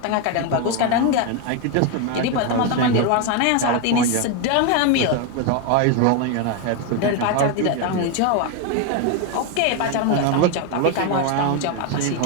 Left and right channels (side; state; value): both; different; correlation 0.02